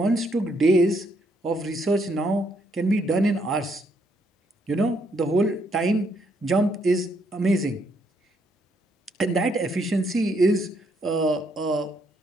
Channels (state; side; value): normal; both; correlation 0.72